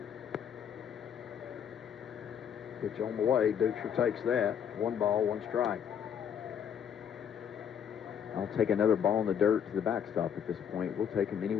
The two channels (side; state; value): right; quieter; 8.3 dB